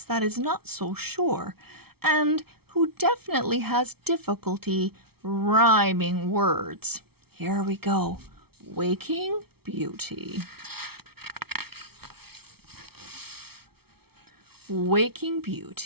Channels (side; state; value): left; late; 0.95 ms